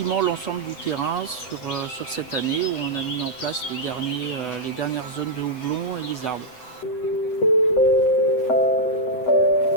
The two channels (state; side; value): late; right; 8.0 ms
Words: l'ensemble du terrain sur cette année où on a mis en place les dernières zones de houblon et les arbres.